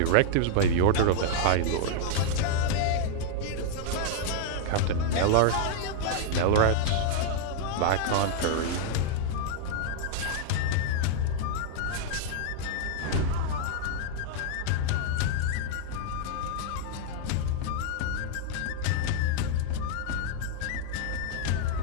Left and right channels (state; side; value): different; both; correlation -0.01